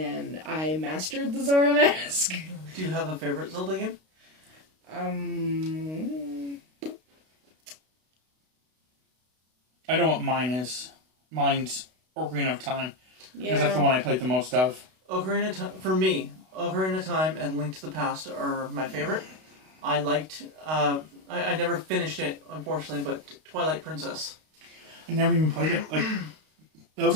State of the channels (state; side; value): late; left; 32 ms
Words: I mastered the Zora Mask. Do you have a favorite Zelda game? I know what mine is. Mine's Ocarina of Time. Yeah. Because that's the one I played the most of. Ocarina of Time, for me, Ocarina of Time and Link to the Past are my favorite. I liked, I never finished it, unfortunately, but Twilight Princess. I never even played it. Like, that